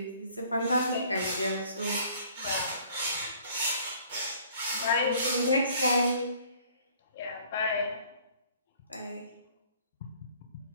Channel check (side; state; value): both; inverted; correlation -0.55